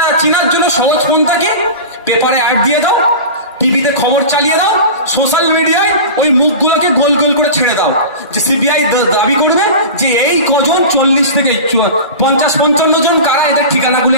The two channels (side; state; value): both; inverted; correlation -0.31